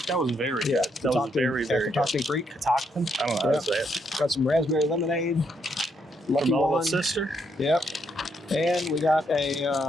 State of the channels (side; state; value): both; normal; correlation 0.76